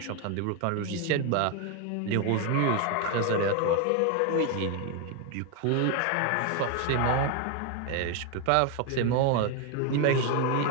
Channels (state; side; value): different; both; correlation 0.01